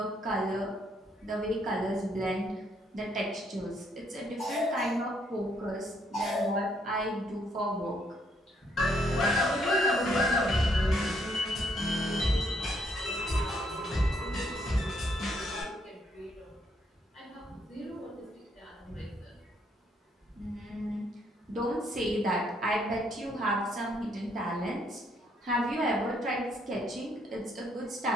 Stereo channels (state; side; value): normal; both; correlation 0.71